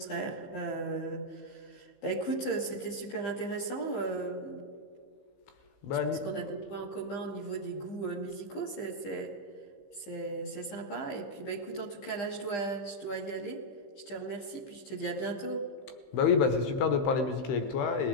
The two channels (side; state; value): right; late; 15 ms